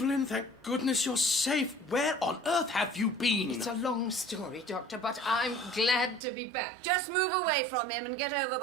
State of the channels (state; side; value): drops out; left; at 6.2 s